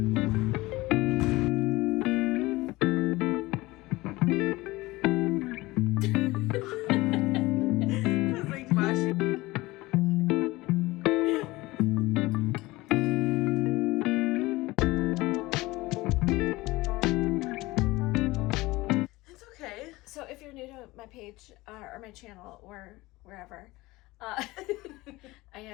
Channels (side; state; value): right; quieter; 20.2 dB